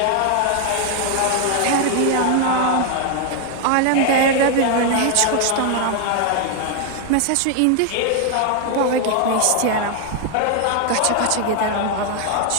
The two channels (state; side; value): different; both; correlation 0.00